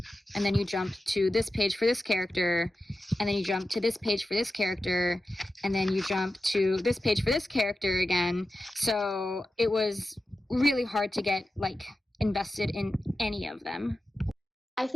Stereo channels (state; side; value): normal; both; correlation 0.93